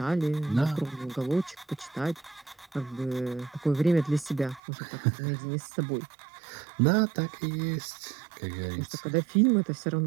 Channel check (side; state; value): left; drops out; at 4.6 s